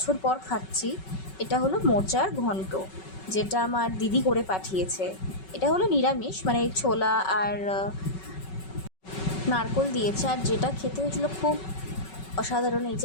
পর খাচ্ছি, এটা হলো মোচার ঘন্ট, যেটা আমার দিদি করে পাঠিয়েছে। এটা হলো নিরামিষ, মানে ছোলা আর নারকোল দিয়েছে। আর যেটা খেতে হয়েছিল খুব অসাধারণ। এই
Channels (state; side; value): late; right; 5.3 ms